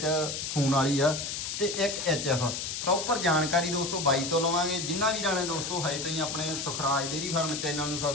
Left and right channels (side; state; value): left; noise; hiss, 4 dB below the sound